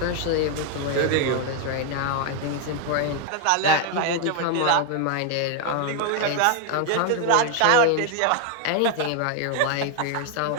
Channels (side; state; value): both; different; correlation 0.00